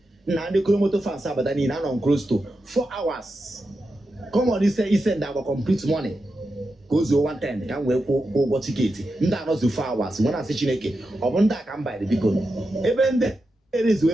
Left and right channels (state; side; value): normal; both; correlation 0.89